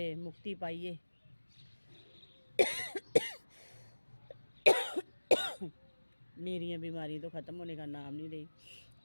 मुक्ति पाइए। मेरी बीमारी तो ख़त्म होने का नाम नहीं रही।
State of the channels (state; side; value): inverted; both; correlation -1.00